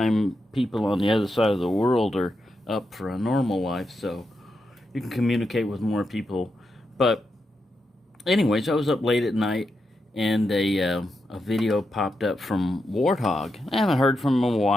people on the other side of the world are up for a normal life, so you can communicate with more people. But anyways, I was up late at night, and a video popped up from Warthog. I haven't heard from him in a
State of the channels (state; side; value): normal; both; correlation 0.85